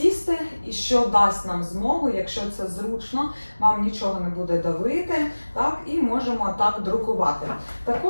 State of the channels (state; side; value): inverted; both; correlation -1.00